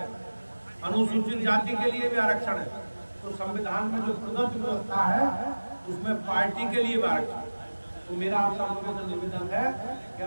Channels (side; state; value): both; inverted; correlation -1.00